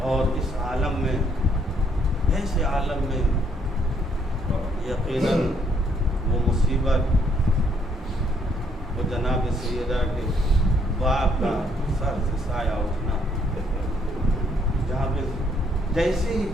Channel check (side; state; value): both; normal; correlation 0.69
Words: और इस आलम में, ऐसे आलम में यकीनन वो मुसीबत, वो जनाब सैयदा के बाप का सर से साया उठना, जहाँ पे जैसे ही